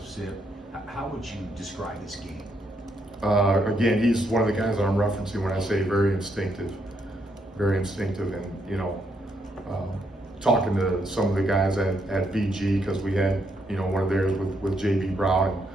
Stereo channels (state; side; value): normal; both; correlation 0.76